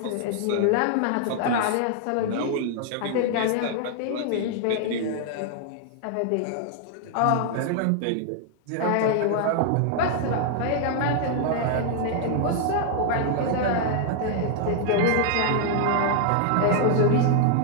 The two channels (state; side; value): different; both; correlation 0.00